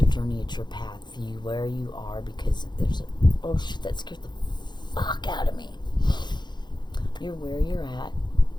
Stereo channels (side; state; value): right; late; 0.21 ms